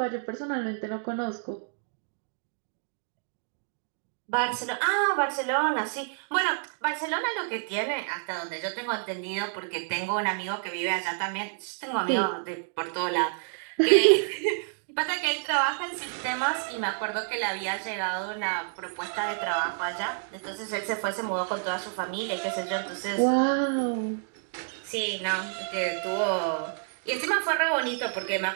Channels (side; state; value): left; silent; digital silence